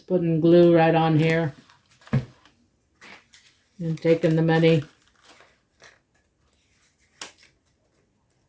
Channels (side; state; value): both; identical; correlation 1.00